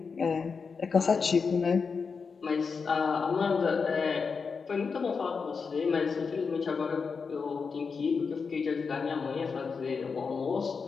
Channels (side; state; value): right; quieter; 5.3 dB